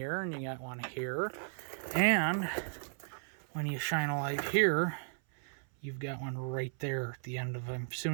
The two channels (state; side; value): silent; left; 54 dB below the other